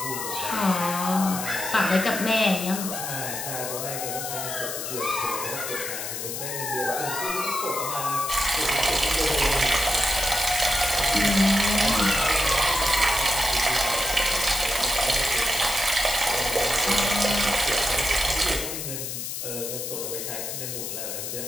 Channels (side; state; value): left; noise; hiss, 5 dB below the sound